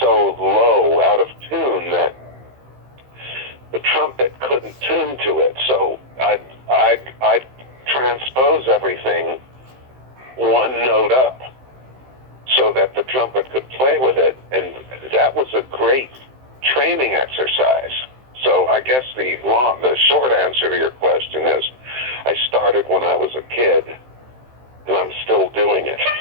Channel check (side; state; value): left; late; 15 ms